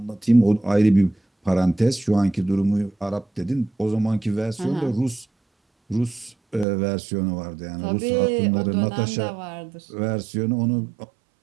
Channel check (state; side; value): drops out; left; at 6.7 s